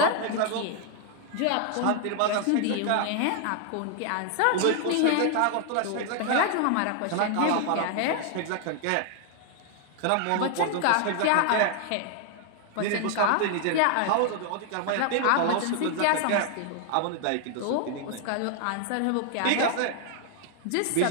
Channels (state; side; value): different; both; correlation 0.00